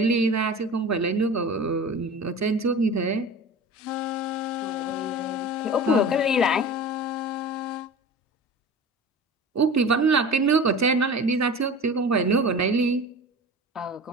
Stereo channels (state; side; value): normal; both; correlation 0.35